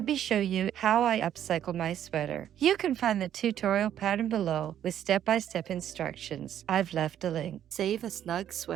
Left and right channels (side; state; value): left; quieter; 10.5 dB